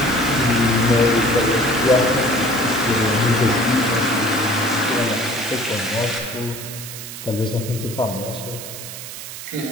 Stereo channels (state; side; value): noise; right; hiss, 11 dB below the sound